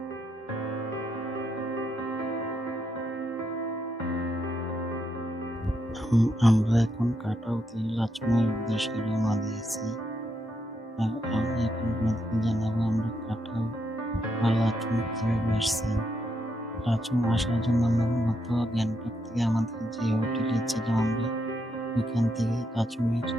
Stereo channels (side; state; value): both; normal; correlation 0.79